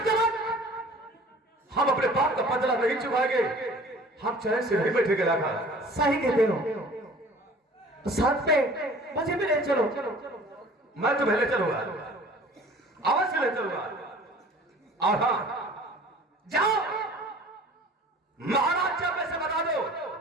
तक हम अपने बाप का बदला नहीं चुकाएंगे, हम चैन से नहीं बैठेंगे। लाखा, सही कहते हो। तो साथ पे मुझे भी ले चलो। मैं तुम्हें ले चलूंगा, अवश्य ले चलूंगा। और हाँ, जाओ महाराज चंपे से बता दो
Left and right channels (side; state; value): both; normal; correlation 0.47